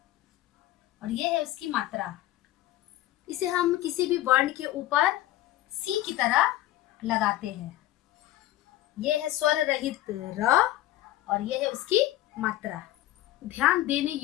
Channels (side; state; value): right; quieter; 15.1 dB